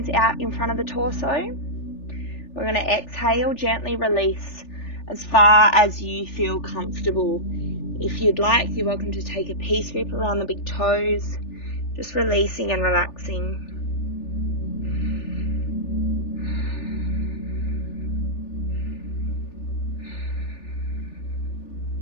out in front of the torso. We're going to exhale, gently release as far as you feel comfortable. If you'd like, you're welcome to take a peace grip around the big toes, just releasing and relaxing.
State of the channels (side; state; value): right; late; 3.4 ms